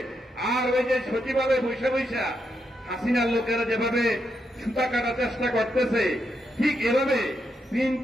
আর ওই যে সচিবালয়ে বৈশা বৈশা হাসিনার লোকেরা যেভাবে সুতা কাটার চেষ্টা করতেছে, ঠিক এভাবে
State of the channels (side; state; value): both; normal; correlation 0.82